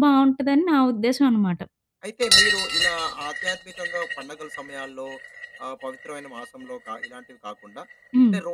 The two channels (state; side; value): identical; both; correlation 1.00